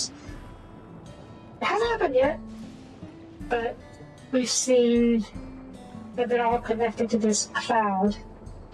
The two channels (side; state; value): both; identical; correlation 1.00